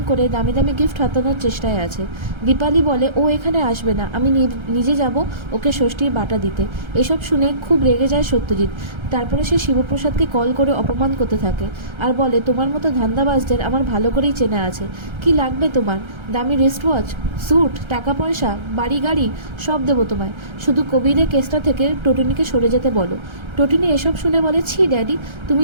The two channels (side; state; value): left; late; 1.3 ms